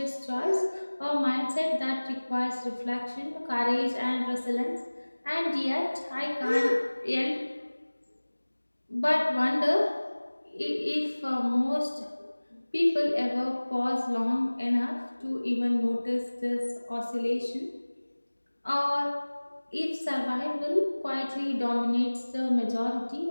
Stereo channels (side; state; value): both; inverted; correlation -1.00